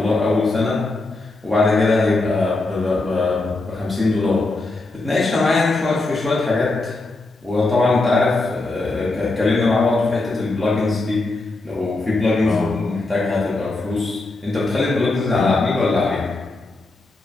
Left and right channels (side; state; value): right; quieter; 3.1 dB